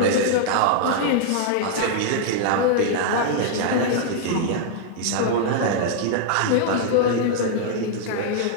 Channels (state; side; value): different; both; correlation -0.01